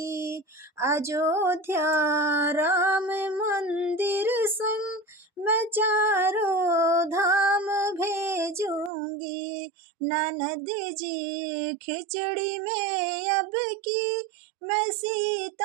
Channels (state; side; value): drops out; left; at 8.9 s